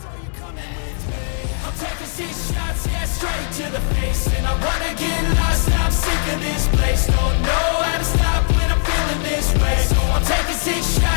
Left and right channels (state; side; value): silent; right; digital silence